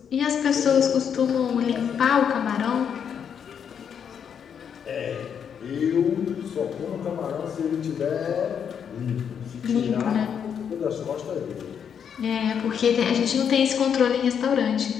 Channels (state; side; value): quieter; right; 7.8 dB